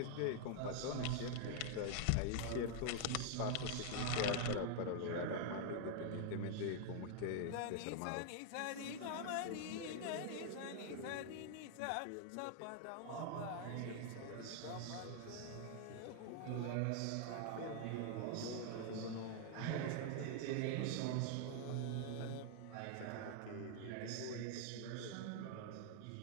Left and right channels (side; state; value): both; different; correlation 0.00